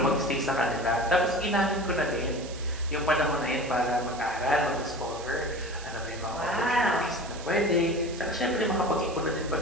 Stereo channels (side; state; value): right; noise; hiss, 15 dB below the sound